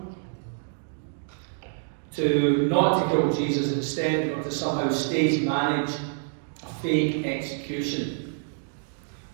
not to kill Jesus, instead, or to somehow stage manage a fake execution.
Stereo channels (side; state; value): left; silent; digital silence